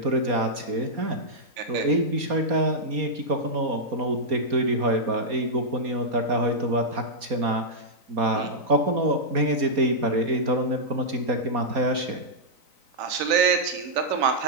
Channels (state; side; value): late; left; 3.9 ms